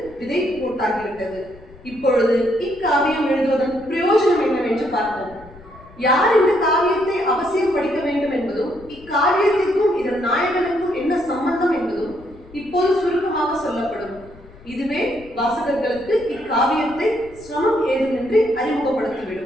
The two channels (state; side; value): noise; left; rumble, 22 dB below the sound